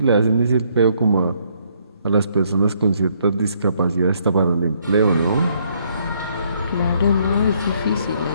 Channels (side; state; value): both; inverted; correlation -0.69